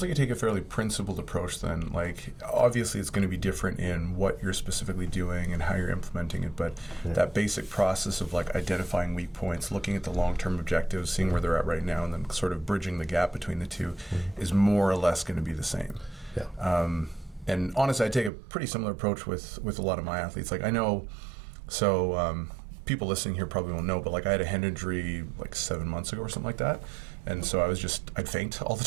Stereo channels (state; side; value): drops out; left; at 18.3 s